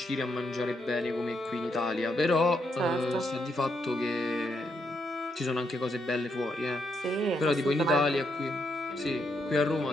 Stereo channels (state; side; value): normal; both; correlation 0.78